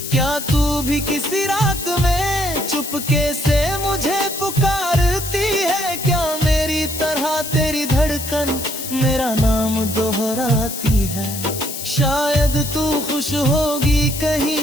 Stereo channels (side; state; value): left; noise; hiss, 7 dB below the sound